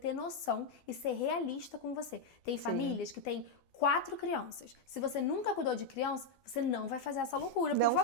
noção e ser realista com você. Tem famílias que têm 4 crianças. Se você nunca cuidou de criança, você não vai fazer essa loucura, por Não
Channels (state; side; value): late; right; 12 ms